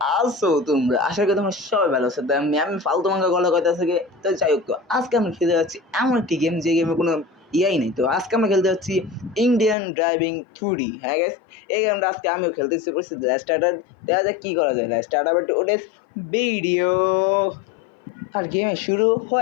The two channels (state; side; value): drops out; right; at 9.8 s